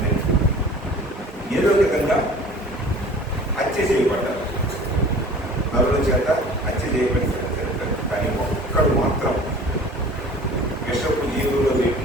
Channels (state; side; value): normal; both; correlation 0.45